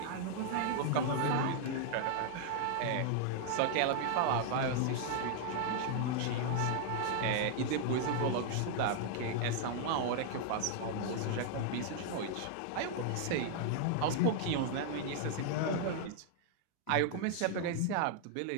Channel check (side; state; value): both; different; correlation 0.00